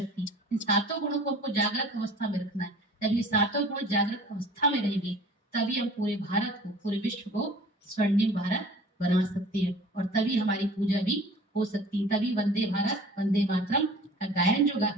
इन 7 गुणों को हमको जागृत अवस्था में रखना है। जब ये 7 गुण जागृत अवस्था में रहेंगे तभी हम पूरे भारत को, पूरे विश्व को स्वर्णिम भारत बना सकते हैं और तभी हमारी पूजा भी हो सकती है। तभी वंदे भारत वंदे मातरम का गायन जो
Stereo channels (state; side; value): normal; both; correlation 0.46